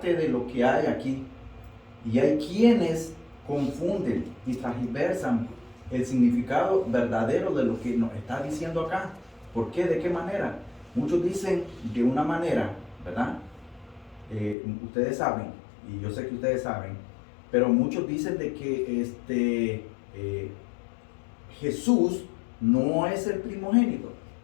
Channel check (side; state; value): right; drops out; at 14.6 s